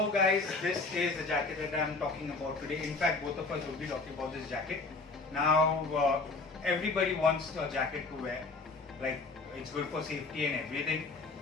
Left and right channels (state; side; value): quieter; right; 3.7 dB